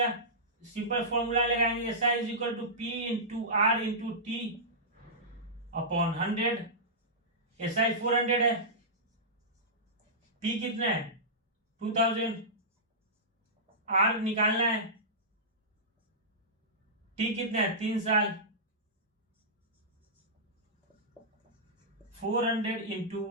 सिंपल फॉर्मूला लगाएंगे, S I is equal to P into R into T upon 100। S I 400 है, पी कितना है 2000, आर निकालना है, टी कितना है 3 साल, 400 इंटू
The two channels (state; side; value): normal; both; correlation -0.16